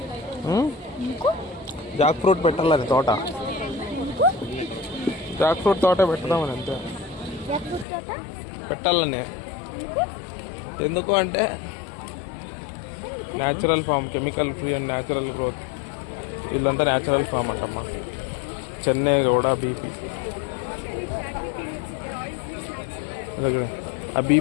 జాక్ ఫ్రూట్ పెట్టాలని తోట, జాక్ ఫ్రూట్ తోట పెడదామని అంతే. పెట్టాలని ఎందుకు అంటే natural farm, chemical free and natural growth. వీళ్ళంతా న్యాచురల్ ఫామ్ అంటమ్మా. చెన్నై కూడా బీపీ, ఆ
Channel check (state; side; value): drops out; right; at 7.9 s